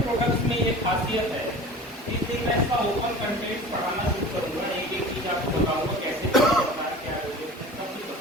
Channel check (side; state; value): both; normal; correlation 0.39